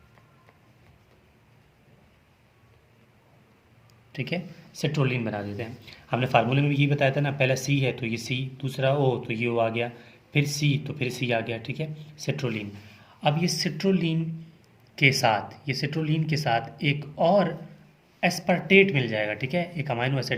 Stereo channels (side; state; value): both; identical; correlation 1.00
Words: ठीक है, सिट्रोलिन बना देते हैं। हमने फार्मूले में भी ये बताया था ना, पहला सी है तो ये सी, दूसरा ओ तो ये ओ आ गया, फिर सी तो फिर सी आ गया। ठीक है, सिट्रोलिन। अब ये सिट्रोलिन के साथ एक और एस्पार्टेट मिल जाएगा। ठीक है, एक अमाइनो